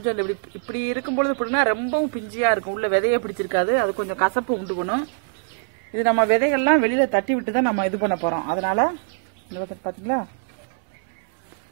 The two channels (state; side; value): silent; left; digital silence